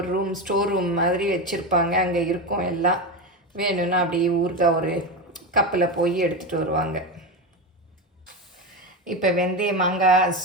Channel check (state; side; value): normal; both; correlation 0.17